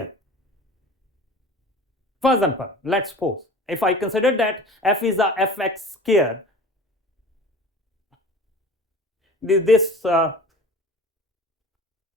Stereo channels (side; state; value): both; normal; correlation 0.40